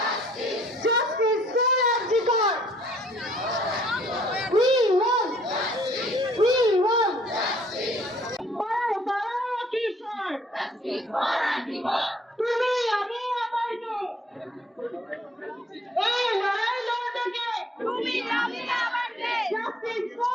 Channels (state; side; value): normal; both; correlation 0.61